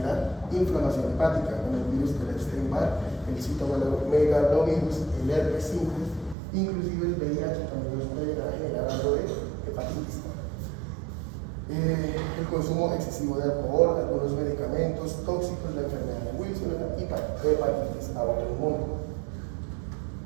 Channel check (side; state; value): left; drops out; at 6.4 s